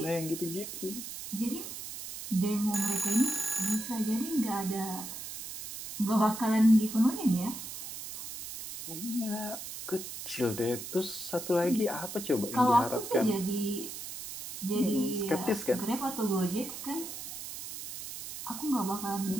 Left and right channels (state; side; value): noise; right; hiss, 9 dB below the sound